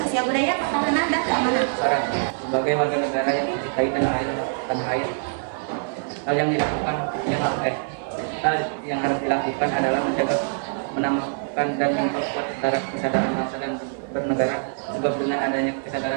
budaya, pertahanan, dan keamanan. Sebagai warga negara yang mencintai tanah air, hal yang harus dilakukan adalah menjaga, menambahkan dan memperkuat kesadaran bangsa dan bernegara, sebab dengan adanya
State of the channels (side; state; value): left; silent; 62 dB below the other